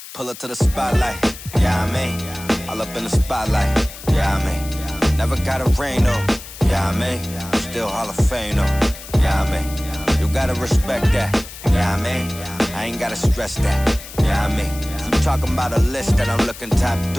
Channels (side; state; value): left; noise; hiss, 14 dB below the sound